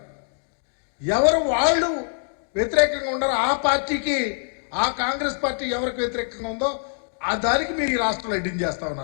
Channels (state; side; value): silent; right; digital silence